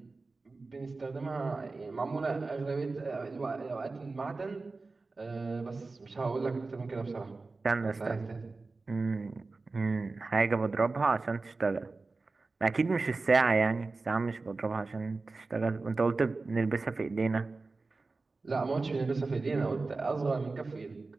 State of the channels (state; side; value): quieter; left; 3.7 dB